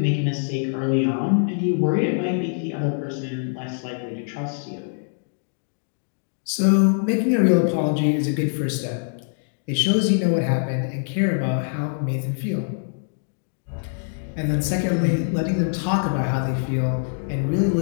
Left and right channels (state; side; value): silent; right; digital silence